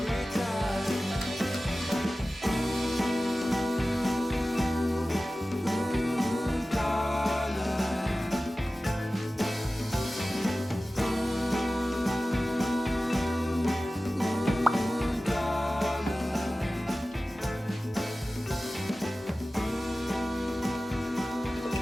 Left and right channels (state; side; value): normal; both; correlation 0.96